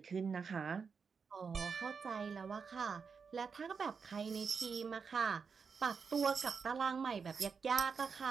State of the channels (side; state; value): left; quieter; 5.7 dB